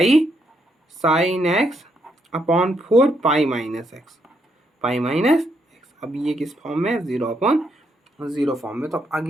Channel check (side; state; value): both; normal; correlation 0.76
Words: sine x upon 4 pi minus x, pi minus x. अब ये किस फॉर्म में, 0/0 फॉर्म में। तो